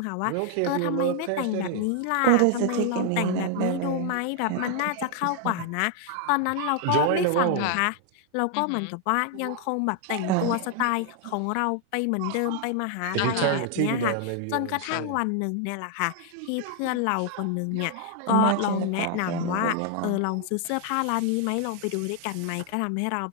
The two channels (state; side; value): different; both; correlation 0.00